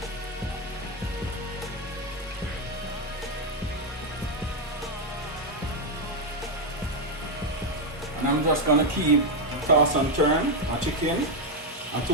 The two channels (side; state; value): both; normal; correlation 0.04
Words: And I'm just gonna keep toss and turn my chicken